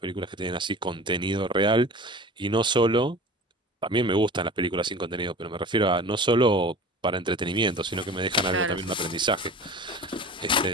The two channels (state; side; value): normal; both; correlation 0.39